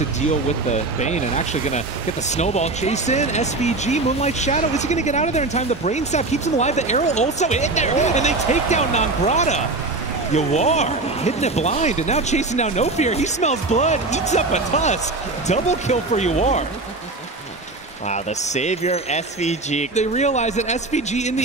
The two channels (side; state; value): left; quieter; 3.2 dB